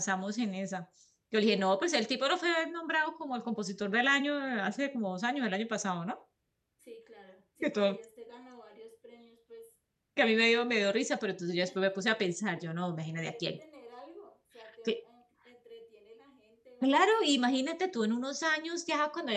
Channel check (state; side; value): identical; both; correlation 1.00